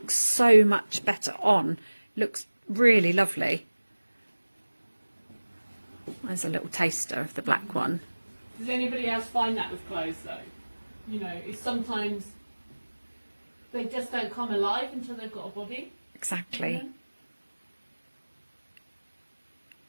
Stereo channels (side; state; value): both; inverted; correlation -1.00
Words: so much better on. Looks really lovely. There's a little taster of the black one. Does anybody else find that with clothes though? You know, it's sometimes they just don't come alive until they've got a body. Exactly.